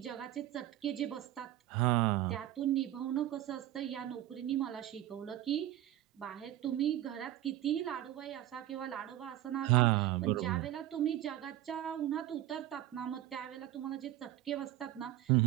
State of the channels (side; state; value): left; quieter; 13.5 dB